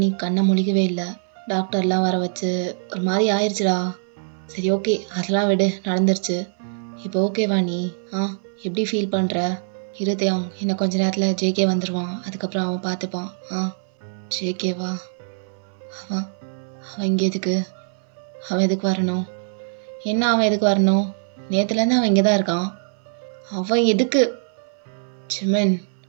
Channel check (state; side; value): silent; left; 59 dB below the other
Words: நீ கண்ணை முழிக்கவே இல்லை. டாக்டர்லாம் வர வச்சு ஒரு மாதிரி ஆயிடுச்சுடா. சரி ஓகே, அதெல்லாம் விடு, நடந்துருச்சு. இப்போ ஓகேவா நீ? ஆ எப்படி ஃபீல் பண்ணுற? இருதயம் இன்னும் கொஞ்ச நேரத்தில் ஜேகே வந்துடுவான், அதுக்கப்புறம் அவன் பார்த்துப்பான். ஜேகேவா? அவன் அவன் இங்கே எதுக்கு? அவன் எதுக்கு வரணும்? என்ன அவன் எதுக்கு வரணும்? நேற்றுலேருந்து அவன் இங்கே தான் இருக்கான். அவன் எதுக்கு? ஜிமின்,